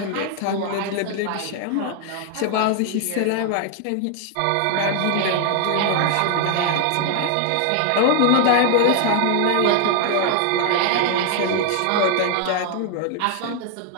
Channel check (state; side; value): different; both; correlation 0.00